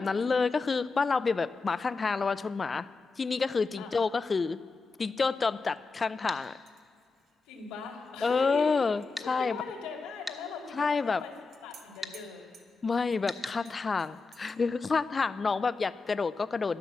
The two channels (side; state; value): right; quieter; 4.3 dB